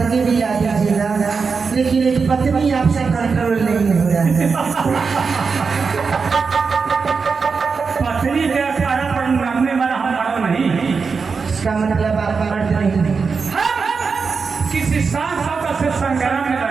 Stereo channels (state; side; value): quieter; left; 5.1 dB